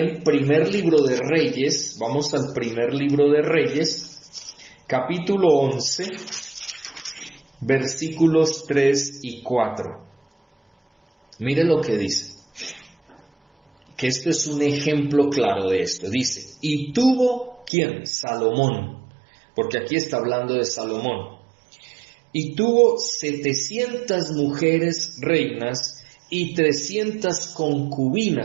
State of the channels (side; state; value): left; drops out; at 17.7 s